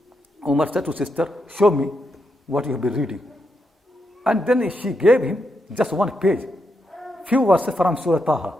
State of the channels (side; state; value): both; normal; correlation 0.82